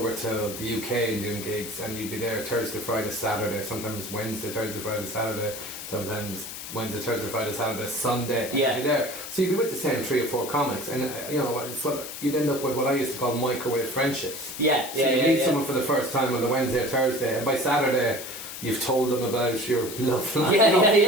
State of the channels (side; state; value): left; noise; hiss, 9 dB below the sound